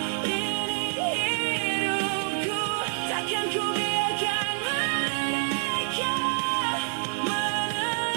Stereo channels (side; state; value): left; silent; digital silence